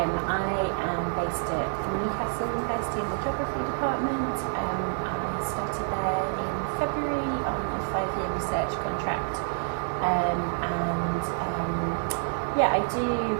am based at Newcastle University in the Geography Department. I started there in February on a 5-year research contract. Yeah, I do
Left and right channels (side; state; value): left; silent; digital silence